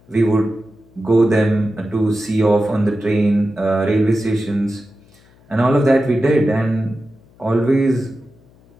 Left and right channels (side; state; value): left; noise; hum, 29 dB below the sound